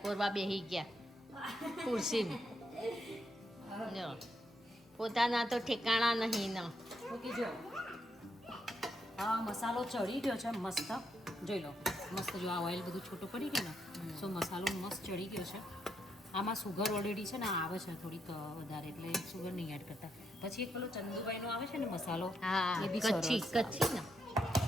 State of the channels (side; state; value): both; normal; correlation 0.79